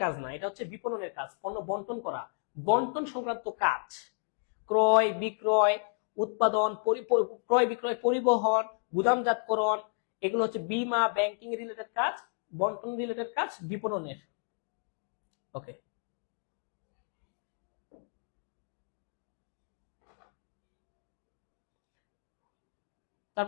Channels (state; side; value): silent; right; 56 dB below the other